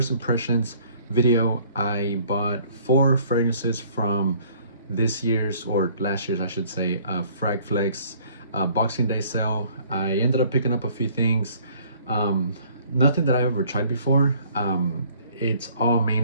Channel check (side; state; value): both; inverted; correlation -0.57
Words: impressions video. I bought 4 fragrances from this year's, or last year's I should say, Fragflex Boxing Day sale. I ended up picking up a few things, nothing that I've ever tried before. It's all